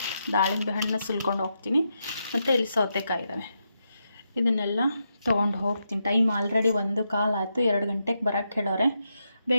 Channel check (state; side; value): inverted; both; correlation -0.84